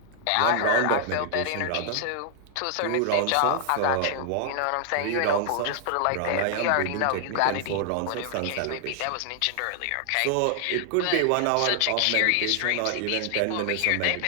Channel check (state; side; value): different; both; correlation 0.00